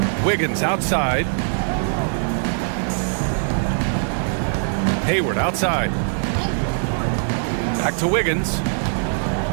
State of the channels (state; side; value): silent; left; 65 dB below the other